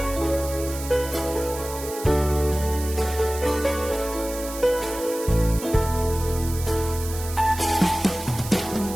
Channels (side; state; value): right; noise; hiss, 11 dB below the sound